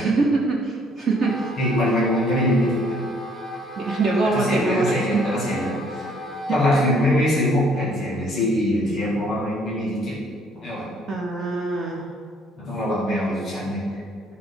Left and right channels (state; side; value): normal; both; correlation 0.63